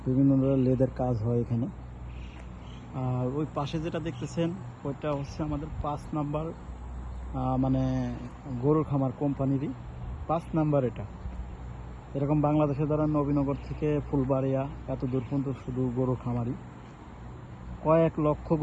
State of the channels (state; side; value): identical; both; correlation 1.00